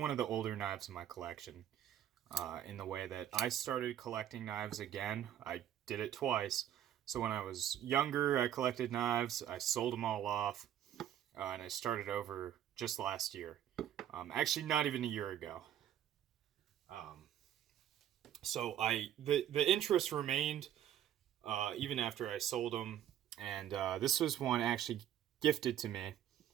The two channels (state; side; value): quieter; left; 10.9 dB